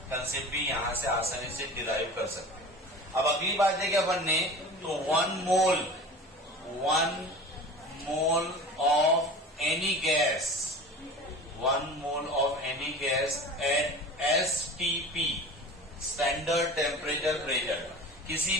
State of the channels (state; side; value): normal; both; correlation 0.36